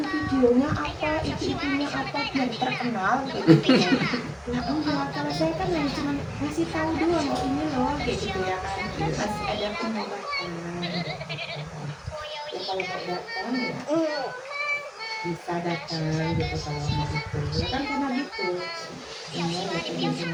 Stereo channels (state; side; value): identical; both; correlation 1.00